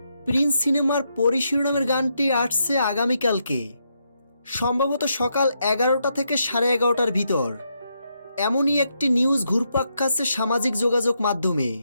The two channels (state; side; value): inverted; both; correlation -0.80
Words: প্রিন্স সিনেমার পরি শিরোনামের গানটি আসছে আগামীকালকে, সম্ভবত সকাল 11টা থেকে 11:30টার ভিতর। এমনই একটি নিউজ ঘুরপাক খাচ্ছে সামাজিক যোগাযোগ মাধ্যমে।